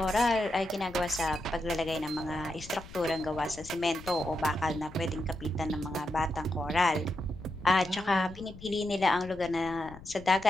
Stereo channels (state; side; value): noise; left; rumble, 17 dB below the sound